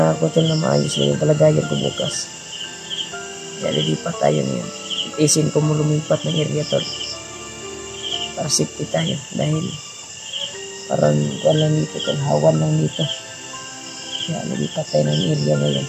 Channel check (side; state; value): both; identical; correlation 1.00